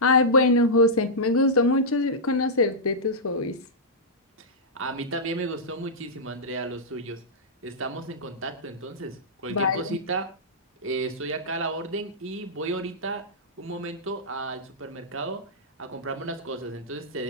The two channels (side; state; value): both; normal; correlation -0.11